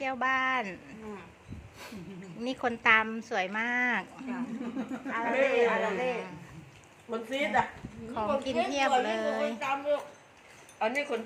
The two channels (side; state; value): both; identical; correlation 1.00